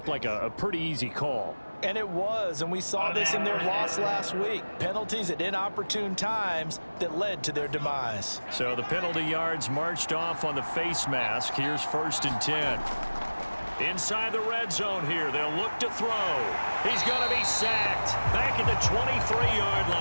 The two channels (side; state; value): both; inverted; correlation -1.00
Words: like a pretty easy call. And it was, and we saw this in their loss last week. Penalties at inopportune times that led to their demise. So the penalty yards marched off on the face mask. Here's 1st and 10. Inside the red zone here, they'll look to throw. He's going to be sacked back at the 23-yard